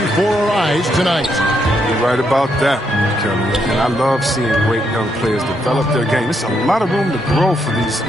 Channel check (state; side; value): normal; both; correlation 0.77